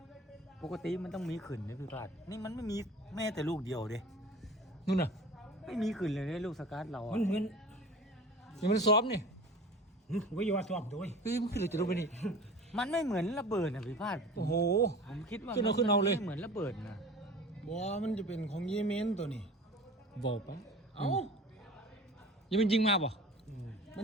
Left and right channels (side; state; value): both; normal; correlation 0.40